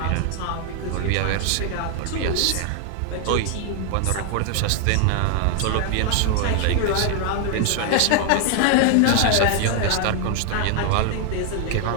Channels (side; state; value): both; different; correlation 0.00